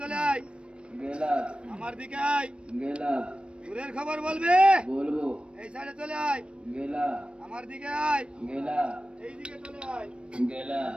চলে আয়, গেলা। আমার দিকে আয়, গেলা। দূরের খবর বলবে। বলবো। এই সাইডে চলে আয়, গেলা। আমার দিকে আয়, গেলা। এইদিকে চলে আয়, গেলা।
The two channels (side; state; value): left; late; 0.058 ms